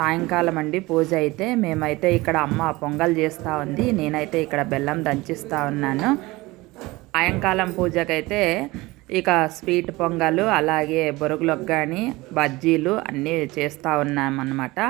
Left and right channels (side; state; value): left; quieter; 21.1 dB